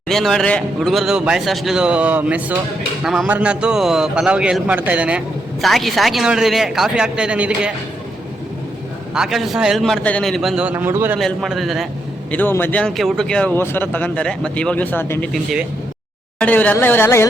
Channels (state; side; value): normal; both; correlation 0.80